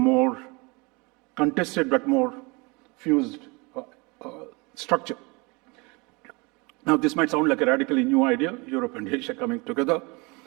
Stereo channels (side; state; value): left; quieter; 27.5 dB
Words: contested but more fused structure. Now, this might sound like a radically new idea, Europe and Asia coming together,